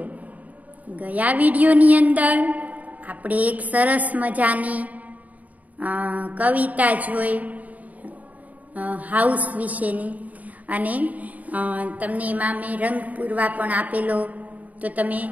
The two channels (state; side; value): late; left; 0.074 ms